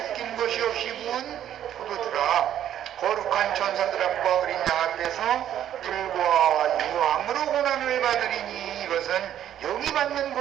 것이 없이 부은 포도주라. 거룩한 천사들 앞과 어린 양 앞에서 불과 유황으로 고난을 받으리니 이것은 영이 받는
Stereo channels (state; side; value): quieter; left; 10.8 dB